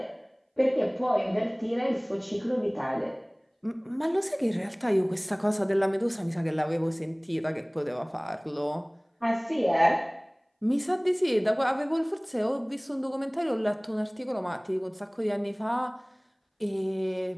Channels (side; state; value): both; identical; correlation 1.00